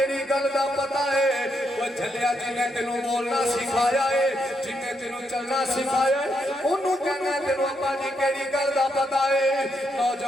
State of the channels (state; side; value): normal; both; correlation 0.79